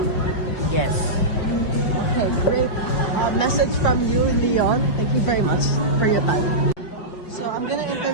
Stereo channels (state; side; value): late; right; 5.5 ms